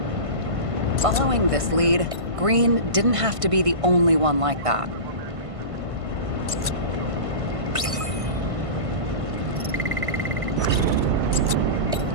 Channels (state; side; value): late; left; 1.5 ms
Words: Following this lead, Green didn't have to be the only one like that.